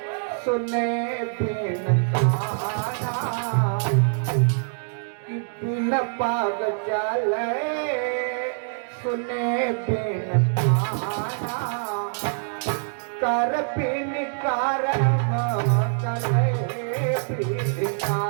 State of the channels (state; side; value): silent; left; digital silence